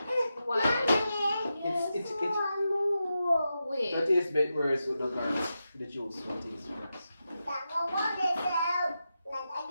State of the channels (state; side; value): inverted; both; correlation -0.89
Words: Why? It's Wait. that tastes a bit worse with the garlic. The juice will taste worse.